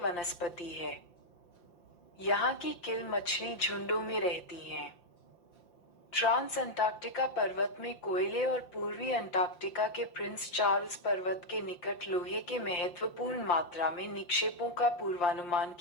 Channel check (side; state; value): right; late; 5.7 ms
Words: है। यहाँ की किल मछली झुंडों में रहती हैं। ट्रांस अंटार्कटिका पर्वत में कोयले और पूर्वी अंटार्कटिका के प्रिंस चार्ल्स पर्वत के निकट लोहे के महत्वपूर्ण मात्रा में निक्षेपों का पूर्वानुमान